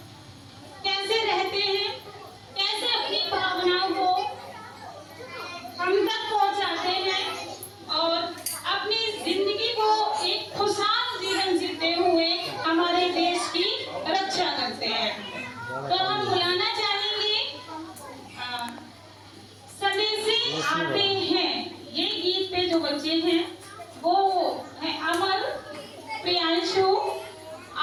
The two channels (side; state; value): both; identical; correlation 1.00